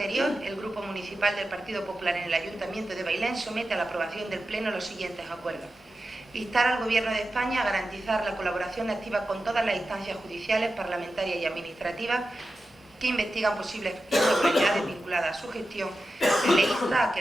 el Grupo Municipal del Partido Popular en el Ayuntamiento de Bailén somete a la aprobación del Pleno los siguientes acuerdos. Instar al Gobierno de España a garantizar la colaboración activa con todas las instancias judiciales, parlamentarias y administrativas que investigan posibles irregularidades vinculadas a su gestión y le insta a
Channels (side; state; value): both; normal; correlation 0.92